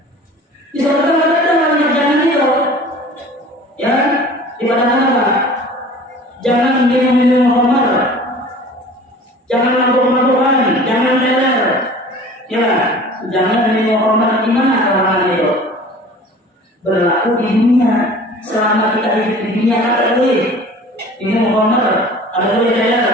Di surga ada banyak jangan itu, ya di padang apa? Jangan minum khamar, jangan mabuk-mabukan, jangan teler, ya jangan minum khamar. Di mana orang itu? Berlaku di dunia. Selama kita hidup di dunia ada boleh minum khamar, ada boleh teler,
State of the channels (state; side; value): normal; both; correlation 0.44